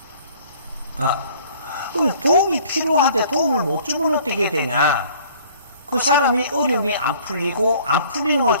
말이에요. 그럼 도움이 필요한데 도움을 못 주면 어떻게 되냐? 그 사람이 어려움이 안 풀리고, 안 풀리는 걸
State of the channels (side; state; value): both; inverted; correlation -0.54